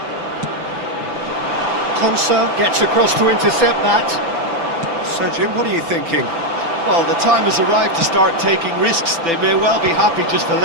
Konsa gets across to intercept that. So, Jim, what are you thinking? Well, the time has arrived to start taking risks. They may well be happy just to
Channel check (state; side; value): late; left; 6.0 ms